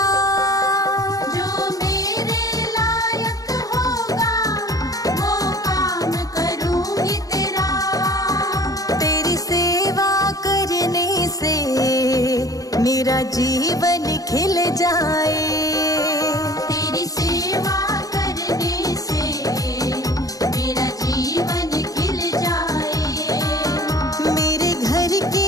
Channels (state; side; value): late; right; 0.17 ms